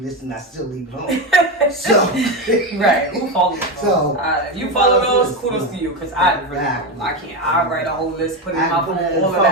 and I still leave it home. So right, who follows those? So if you follow those, kudos to you. Because I really don't. I can't. I write a whole list, put it in my phone, all of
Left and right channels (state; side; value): normal; both; correlation 0.14